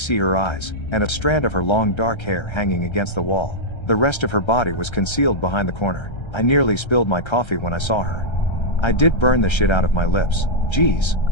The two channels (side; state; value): right; late; 1.3 ms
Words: her eyes, and a strand of her long dark hair hanging against the wall. The rest of her body was concealed behind the corner. I nearly spilled my coffee when I saw her. I did burn the shit out of my lips. "Geez,